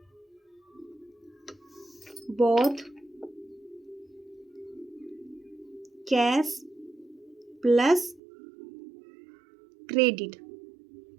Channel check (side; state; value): left; drops out; at 8.2 s